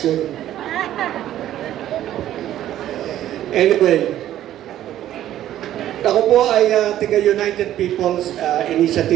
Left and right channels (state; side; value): quieter; left; 12.4 dB